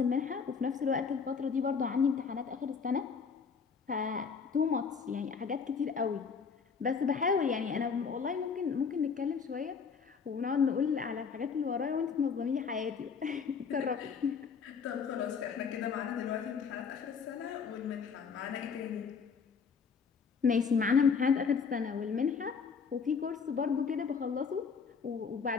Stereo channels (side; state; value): right; quieter; 5.9 dB